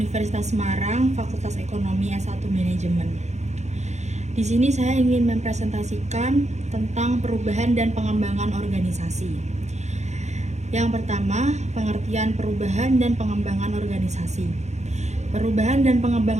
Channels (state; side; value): late; left; 0.33 ms